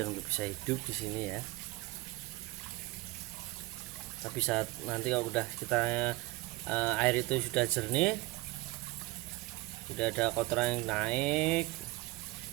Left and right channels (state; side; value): quieter; left; 21.3 dB